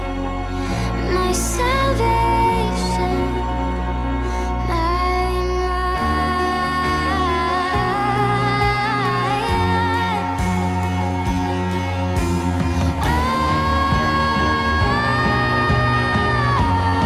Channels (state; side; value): identical; both; correlation 1.00